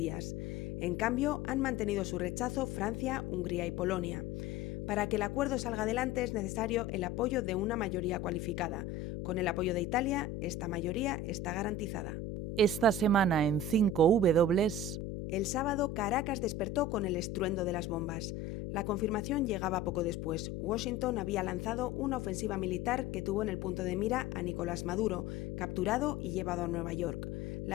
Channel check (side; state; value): left; noise; hum, 5 dB below the sound